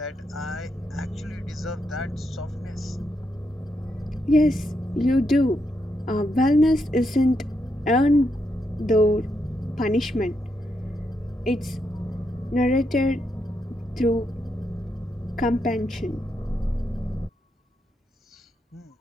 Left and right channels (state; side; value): normal; both; correlation 0.81